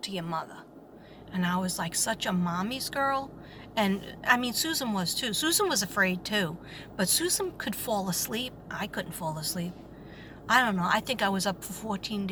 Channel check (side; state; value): both; identical; correlation 1.00